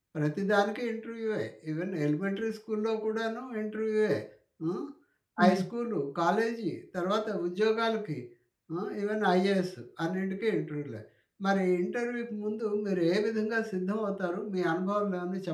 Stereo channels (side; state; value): both; identical; correlation 1.00